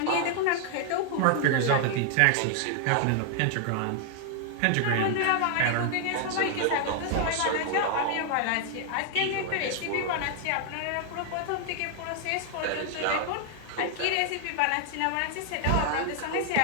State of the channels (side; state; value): both; different; correlation 0.00